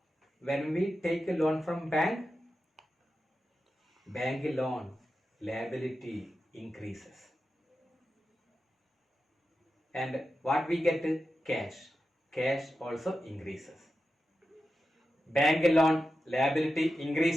When we take a loan from bank loan liability increases. And what we get? Cash. Cash also increases. Bank loan liability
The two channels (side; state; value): both; normal; correlation 0.91